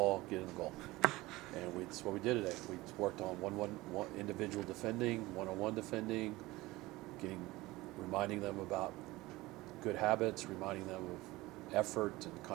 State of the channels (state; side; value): quieter; left; 19.7 dB